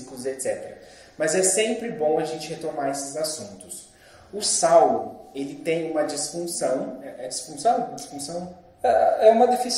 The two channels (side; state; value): both; identical; correlation 1.00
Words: etc. Mas é sempre bom a gente retomar esses assuntos. O Saulo, ele tem uma disfunção, é disfunção? Disfunção? É uma